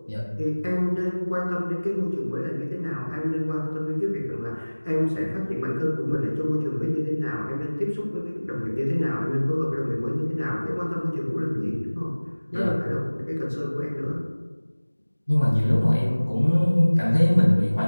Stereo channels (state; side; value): inverted; both; correlation -1.00